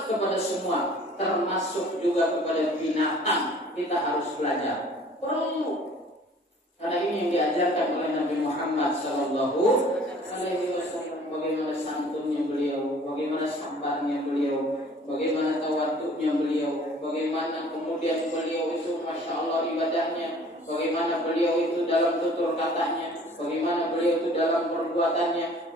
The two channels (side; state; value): both; normal; correlation 0.51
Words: kepada semua, termasuk juga kepada binatang. Kita harus belajar. Perlu. Karena ini yang diajarkan oleh Nabi Muhammad Sallallahu Alaihi Wasallam. Bagaimana santunnya beliau, bagaimana sabarnya beliau, bagaimana tawaduknya beliau, bagaimana kemudian beliau itu masya Allah ibadahnya, bagaimana beliau itu dalam tutur katanya, bagaimana beliau itu dalam perbuatannya.